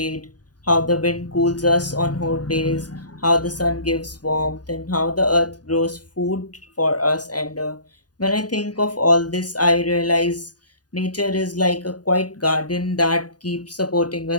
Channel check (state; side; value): late; right; 0.69 ms